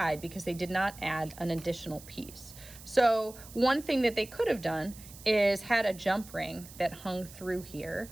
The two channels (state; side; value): noise; right; hiss, 18 dB below the sound